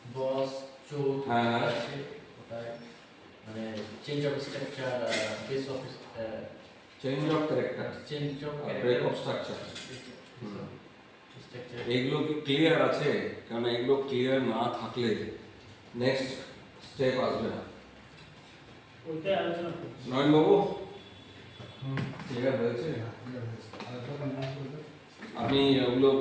বস চোখ হ্যাঁ। আছে ওটায়, মানে change of structure, base of change of character, change of break of structure, structure এইগুলো কি ক্লিয়ার আছে? কারণ এগুলো ক্লিয়ার না থাকলে নেক্সট স্টেপ আসবে না। ওইটাই আলোচনা করছি। নয়নবাবু ক্লিয়ার হয়েছে? আপনি ওগুলো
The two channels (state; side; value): identical; both; correlation 1.00